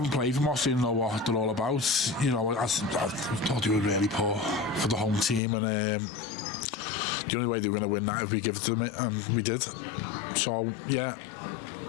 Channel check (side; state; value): right; drops out; at 5.4 s